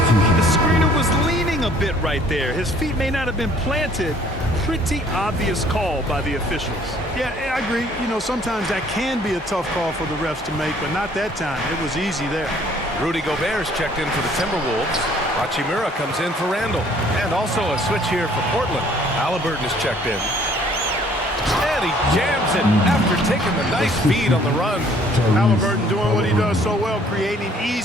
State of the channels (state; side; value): normal; both; correlation 0.59